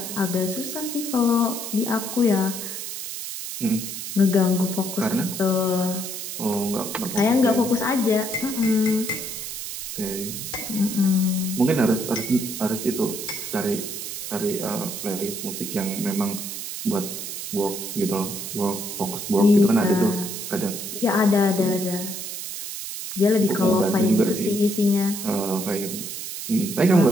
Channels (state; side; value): noise; right; hiss, 7 dB below the sound